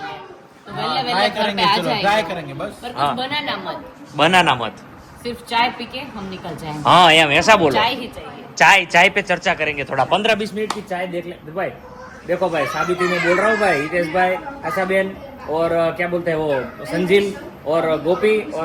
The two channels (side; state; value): both; identical; correlation 1.00